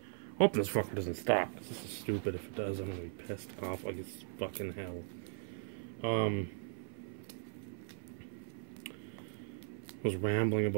Hope this fucker doesn't stop. This is stupid. If it does, I'm gonna be pissed off like it's fucking hell. Was rambling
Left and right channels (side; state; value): left; silent; 52 dB below the other